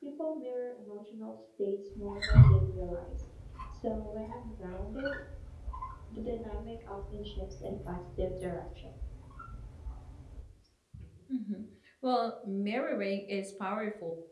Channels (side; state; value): both; identical; correlation 1.00